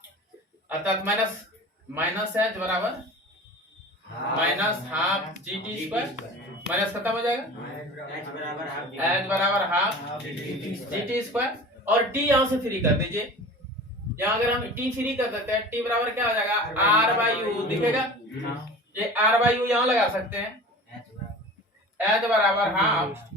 अर्थात माइनस एच बराबर minus half G T square, minus खत्म हो जाएगा, एच बराबर हाफ जी टी स्क्वायर। और टी यहाँ से फ्री कर दीजिए, यहाँ अगर हम टी फ्री कर देते हैं टी बराबर क्या हो जाएगा? आर बाई यू दिखेगा, ये आर बाई यू यहाँ लगा सकते हैं, एच बराबर half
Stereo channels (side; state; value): both; normal; correlation 0.38